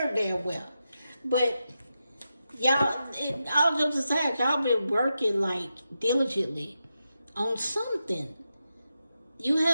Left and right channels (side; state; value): both; inverted; correlation -0.88